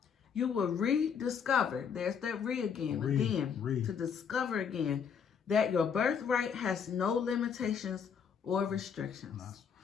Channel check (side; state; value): right; quieter; 7.0 dB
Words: you will rediscover, there's that to discover again that your birthright has no limitations or restrictions.